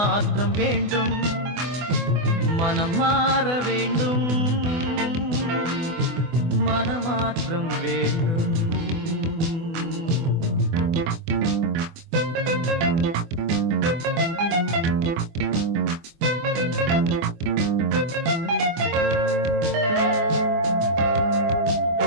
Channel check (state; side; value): late; left; 24 ms